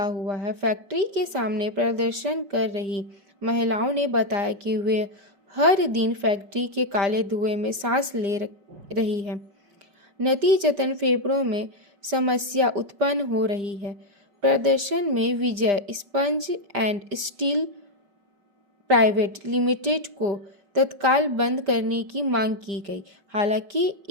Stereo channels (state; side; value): late; left; 5.0 ms